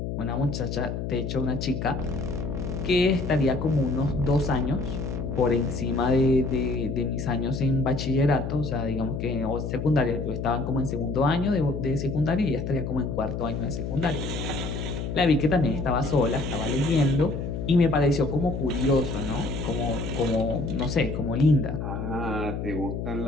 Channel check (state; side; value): noise; left; hum, 4 dB below the sound